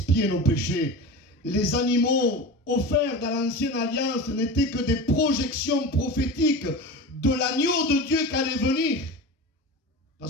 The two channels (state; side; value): normal; both; correlation 0.29